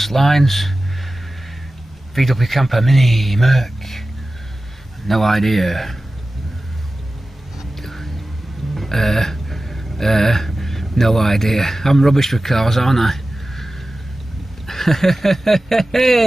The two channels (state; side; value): normal; both; correlation 0.95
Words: lines. VW Camper Mini Merc. No idea. No idea. I'm rubbish with cars, aren't I?